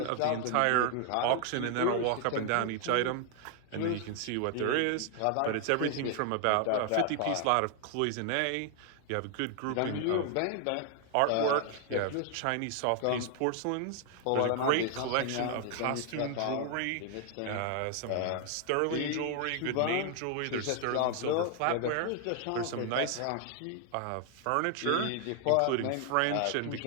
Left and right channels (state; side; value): different; both; correlation 0.00